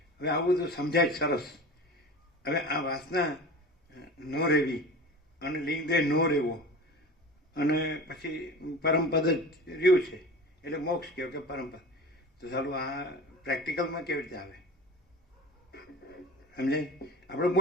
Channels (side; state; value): both; normal; correlation 0.35